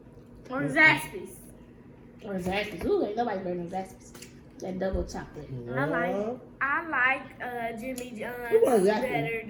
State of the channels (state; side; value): identical; both; correlation 1.00